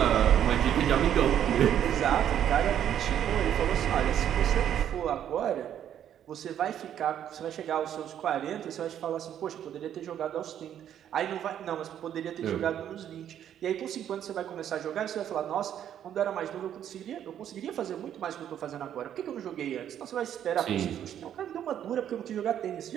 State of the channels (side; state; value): left; quieter; 10.1 dB